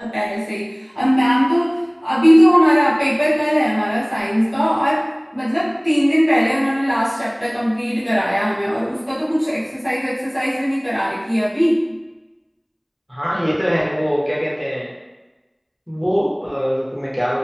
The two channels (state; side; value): identical; both; correlation 1.00